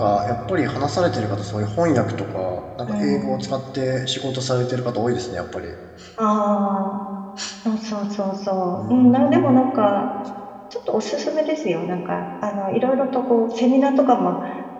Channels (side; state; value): both; identical; correlation 1.00